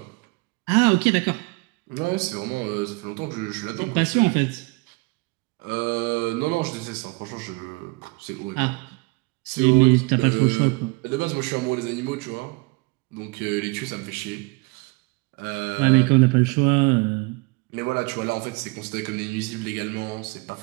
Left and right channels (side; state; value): left; quieter; 27.3 dB